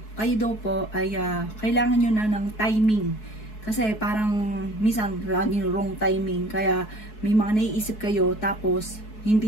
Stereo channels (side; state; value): right; late; 4.7 ms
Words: kayo daw po ay kailangan nyo na ng timing. Kasi parang minsan laging wrong timing. Kaya may mga naiisip kayo tapos